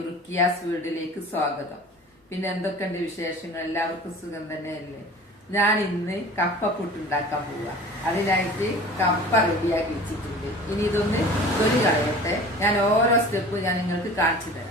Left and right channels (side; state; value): both; normal; correlation 0.41